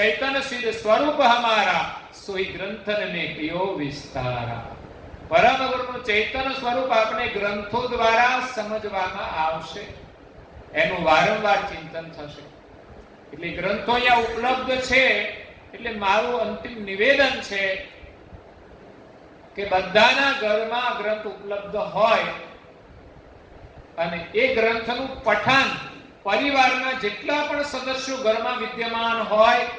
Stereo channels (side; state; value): both; identical; correlation 1.00